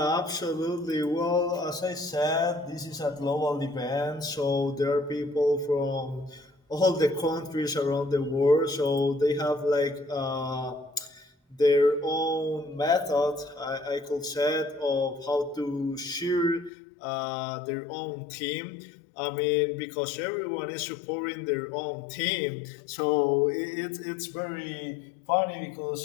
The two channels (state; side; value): drops out; right; at 16.7 s